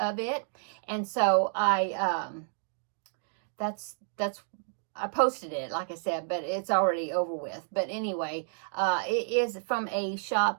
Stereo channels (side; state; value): left; silent; digital silence